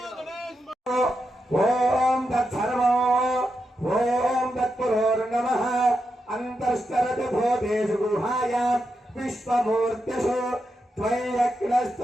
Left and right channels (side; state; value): both; normal; correlation 0.86